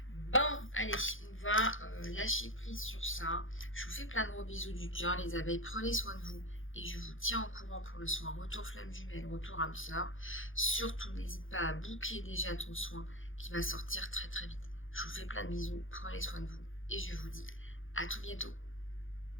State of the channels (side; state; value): right; late; 0.58 ms